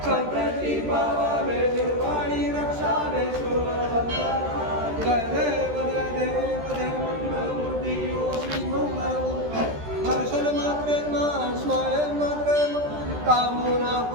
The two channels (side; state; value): left; late; 13 ms